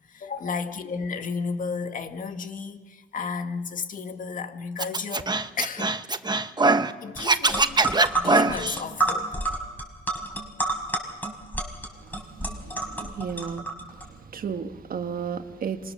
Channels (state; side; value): normal; both; correlation 0.24